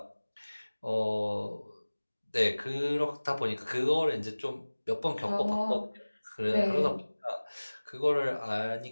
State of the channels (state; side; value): inverted; both; correlation -1.00